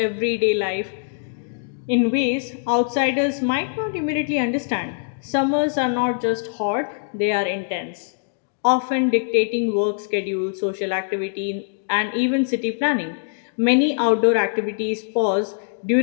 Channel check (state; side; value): silent; right; digital silence